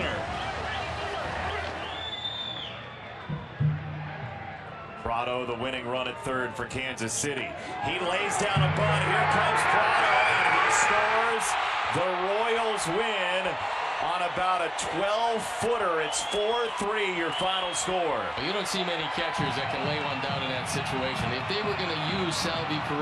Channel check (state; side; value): identical; both; correlation 1.00